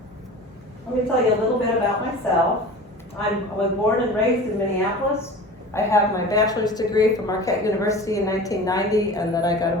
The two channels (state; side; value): normal; both; correlation 0.37